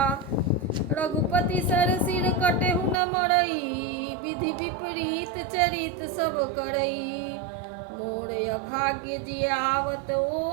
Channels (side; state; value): left; drops out; at 3.0 s